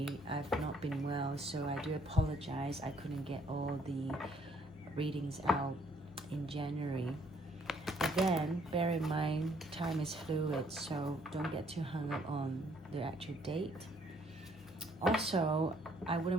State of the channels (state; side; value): normal; both; correlation 0.65